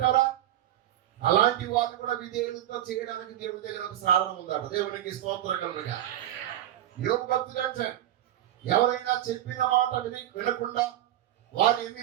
అలాంటి వారిని కూడా విధేయులతో చేయడానికి దేవుడి దగ్గర ఒక సాధనం ఉందట. దేవునికి స్తోత్రం కలుగునుగా. యోగ భక్తులు అంటే ఎవరైనా చెప్పిన మాట వినకుండా, వారిని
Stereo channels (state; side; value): quieter; left; 12.9 dB